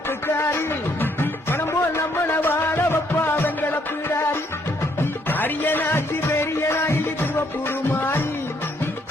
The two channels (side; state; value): both; normal; correlation 0.70